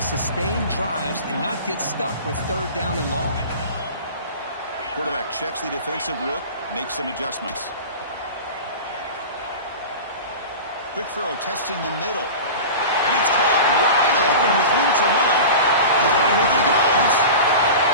sustain drives and not get stuck with third down and long. Quarterback checks the defensive look, makes some adjustments. Quick throw, testing the middle. And it's caught wide open with room to run. And here he goes.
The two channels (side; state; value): both; inverted; correlation -0.32